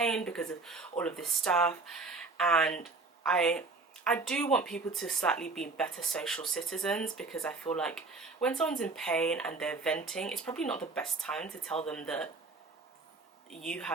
because of all of this stuff. And I do want people to slightly be better social citizens, because I feel like when someone's in pain and they're venting, it's probably not the best time to tell them that you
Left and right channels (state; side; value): quieter; left; 3.8 dB